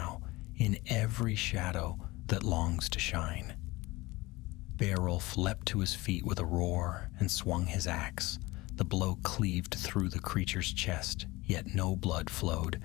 in every shadow that longs to shine." Beowulf leapt to his feet with a roar and swung his axe. The blow cleaved through the creature's chest, yet no blood flowed.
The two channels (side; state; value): right; quieter; 21.1 dB